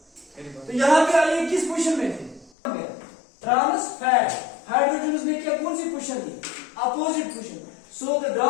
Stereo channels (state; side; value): drops out; right; at 2.5 s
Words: यहाँ पे आइए किस पोजीशन में थे ट्रांस फैट हाइड्रोजन ने क्या कौन सी पोजीशन दी opposite position so the